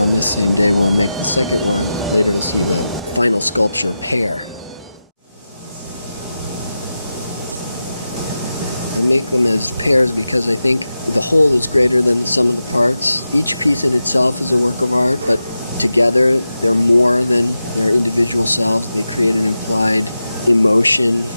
this same day we'll make the second one. Later you'll see the final sculpture pair. I make them as pairs because I think the whole is greater than the sum of the parts. Each piece in itself is a work of art, but together they're more than their individual selves. They create an implied emotion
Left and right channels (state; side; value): inverted; both; correlation -0.92